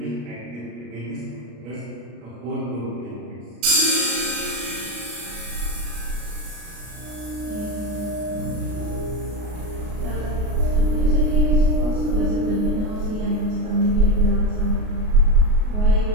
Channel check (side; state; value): left; late; 33 ms